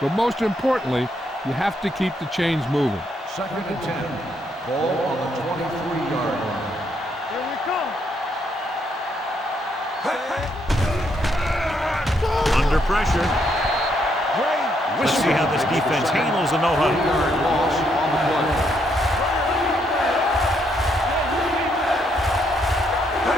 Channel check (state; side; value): normal; both; correlation 0.74